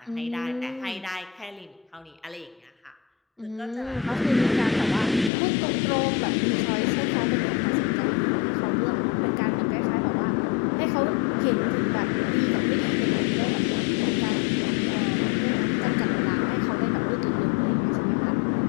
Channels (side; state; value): right; drops out; at 5.3 s